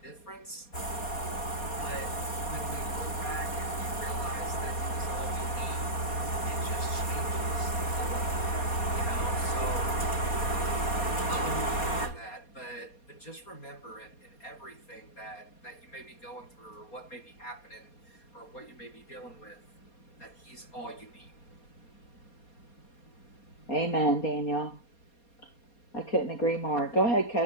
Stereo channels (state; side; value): late; right; 4.2 ms